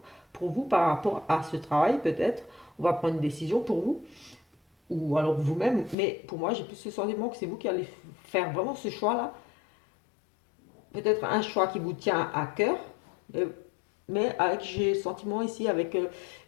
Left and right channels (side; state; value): right; drops out; at 6.0 s